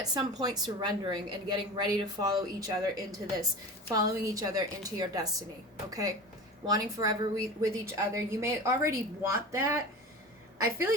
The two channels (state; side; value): normal; both; correlation 0.32